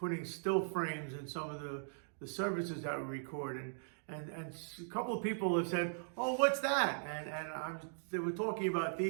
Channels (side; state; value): left; silent; digital silence